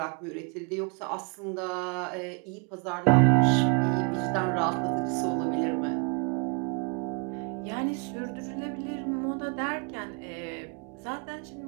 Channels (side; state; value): left; quieter; 33.8 dB